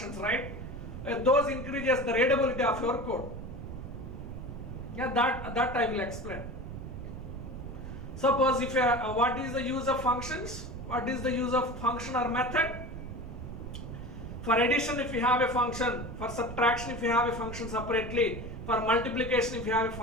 right? Those increases the readability of your code. Yeah, that I will explain. Suppose if what is the use of functions? What is the use of function or method? For addition, if you have a function. For subtraction, if you have a function separately. For multiplication, if you have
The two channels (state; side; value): noise; right; rumble, 9 dB below the sound